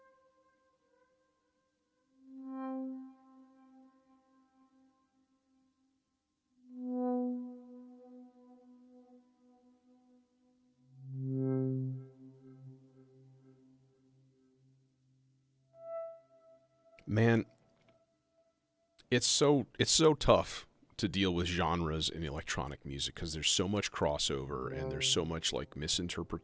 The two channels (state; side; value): identical; both; correlation 1.00